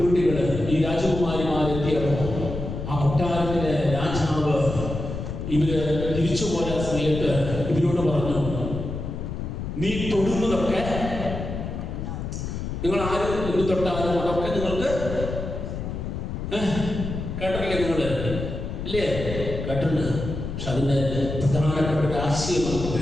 ഈ രാജകുമാരിമാരെത്തിയപ്പോ ആ കൊട്ടാരത്തിലെ രാജാവ് ഇവര് തിരിച്ചു പോയ സമയത്ത് ഇവരോട് പറഞ്ഞു, നീ തൊടുന്നതൊക്കെ, നിങ്ങൾ ആരും എന്ത് തൊട്ടാലും അതൊക്കെ നിങ്ങൾക്ക് കേട്ടില്ലേ? നിങ്ങള് ഇല്ലേ? കേട്ടിട്ടുണ്ട്. പക്ഷെ അതിന്റെ പ്രധാനപ്പെട്ട ഒരു ആശയം നമുക്ക്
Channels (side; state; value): left; noise; rumble, 5 dB below the sound